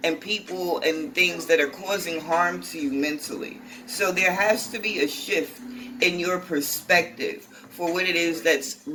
people and things that are causing harm to you mentally. So there has to be a shift in your perspective for what it is that's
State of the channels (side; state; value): both; identical; correlation 1.00